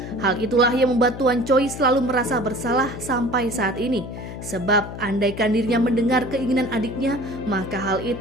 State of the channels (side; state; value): left; noise; hum, 10 dB below the sound